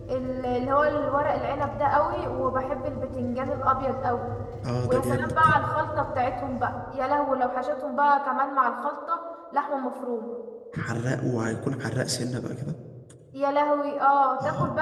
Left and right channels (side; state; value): both; identical; correlation 1.00